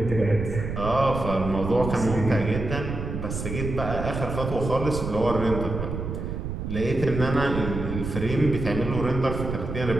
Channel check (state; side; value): noise; right; rumble, 5 dB below the sound